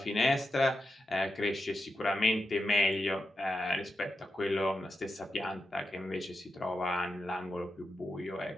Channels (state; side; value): normal; both; correlation 0.88